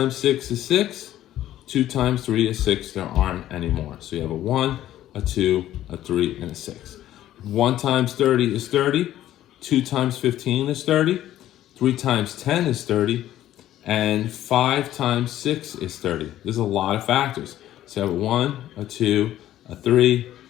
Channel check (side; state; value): right; quieter; 13.1 dB